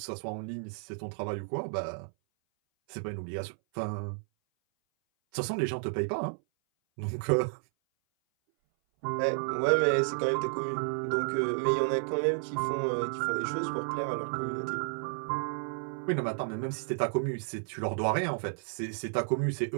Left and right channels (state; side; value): silent; left; 57 dB below the other